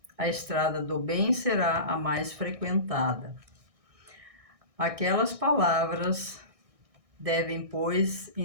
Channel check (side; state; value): left; late; 1.6 ms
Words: a estrada do bem será a mais frequentada. Aquelas palavras devem, pois,